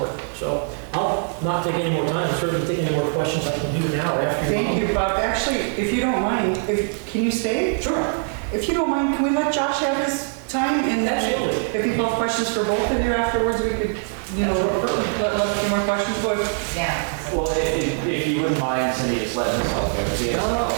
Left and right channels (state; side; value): silent; left; 64 dB below the other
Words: So I'll not take any more time. I'm certainly take any more questions I can do now after. Thank you, Bob. Actually, if you don't mind, can you stay? Sure. If you don't mind, can we let Josh have his time? And then Absolutely. if people have questions for both of you afterwards, we could, let a few more questions go. Yeah. Well, if you wouldn't mind, Cindy, just letting us all go see it a